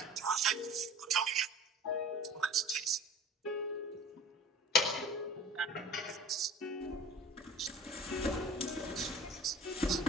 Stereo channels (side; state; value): both; normal; correlation 0.42